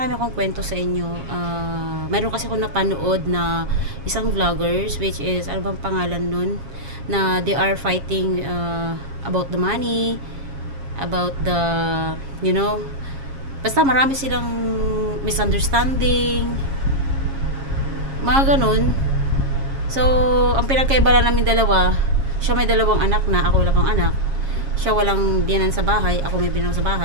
akong kwento sa inyo. Mayroon kasi ako napanood na isang vloggers, which is ano bang pangalan nun, na they are fighting about the money, about the basta marami silang misunderstanding, mga ganun. So ang pinagkaiba lang namin dalawa, siya may dalawang anak na, ako wala pang anak. Siya walang biyanan sa bahay, ako may biyanan sa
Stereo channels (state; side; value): late; left; 7.3 ms